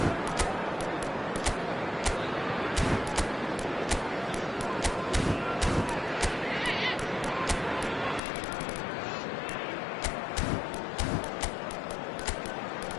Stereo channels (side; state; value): right; drops out; at 8.2 s